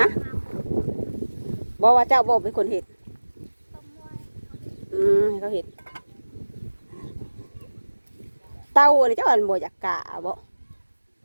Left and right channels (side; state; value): both; inverted; correlation -1.00